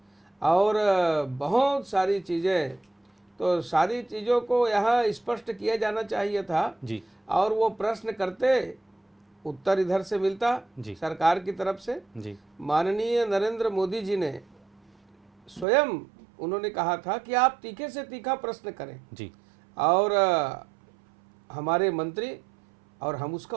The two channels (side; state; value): left; drops out; at 15.7 s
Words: और बहुत सारी चीज़ें। तो सारी चीज़ों को यहाँ स्पष्ट किया जाना चाहिए था जी, और वो प्रश्न करते उत्तर इधर से मिलता जी, सरकार की तरफ से। जी, माननीय नरेंद्र मोदी जी ने स्वयं उन्होंने कहा था कि आप तीखे से तीखा प्रश्न करें जी, और हमारे मंत्री और हम उसका